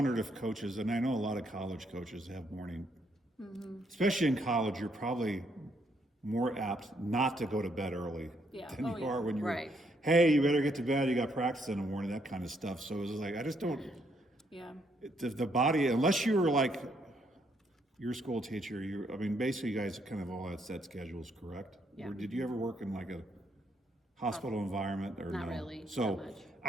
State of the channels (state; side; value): normal; both; correlation 0.73